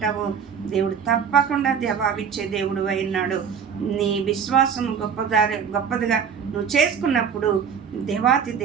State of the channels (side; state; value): left; quieter; 7.0 dB